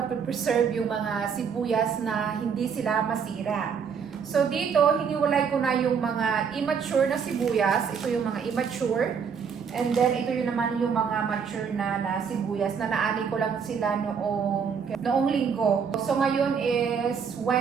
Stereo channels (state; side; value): quieter; left; 6.6 dB